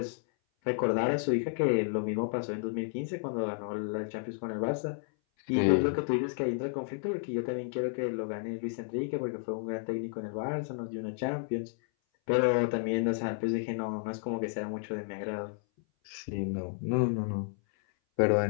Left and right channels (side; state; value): right; silent; 57 dB below the other